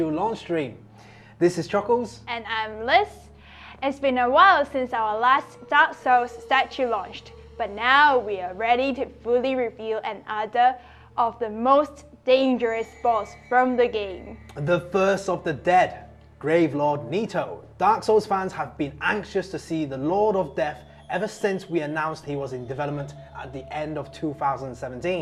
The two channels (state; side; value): identical; both; correlation 1.00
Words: launch stream. This is Chuckles. And I'm Liz. It's been a while since our last Dark Souls statue launched, but now we are ready to fully reveal another of the most dangerous boss from the game. The first of the dead, Gravelord Nito. Dark Souls fans have been anxious to see the Lord of Death ever since we announced he was in development at the end of